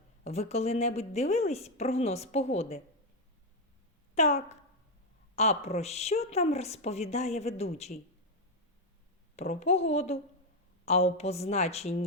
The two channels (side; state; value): both; normal; correlation 0.05